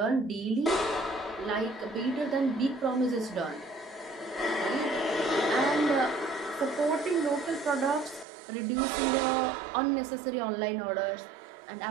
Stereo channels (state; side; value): drops out; left; at 8.2 s